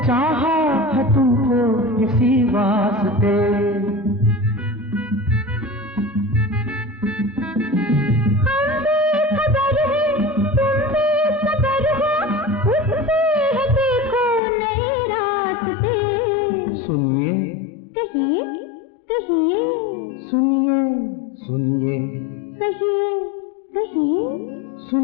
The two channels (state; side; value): drops out; right; at 14.4 s